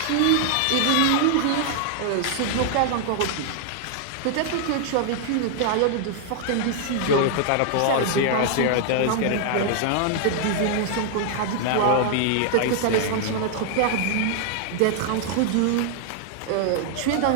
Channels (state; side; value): different; both; correlation 0.00